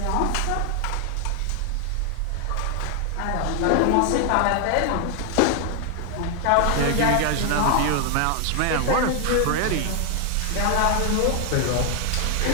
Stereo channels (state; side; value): different; both; correlation 0.00